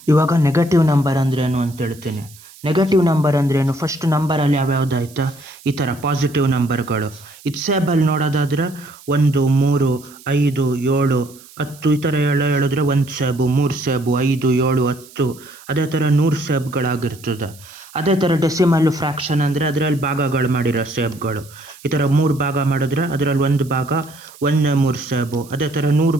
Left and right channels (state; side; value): noise; right; hiss, 22 dB below the sound